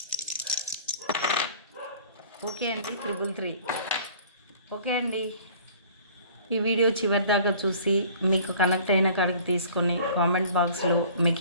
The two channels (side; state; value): both; inverted; correlation -0.49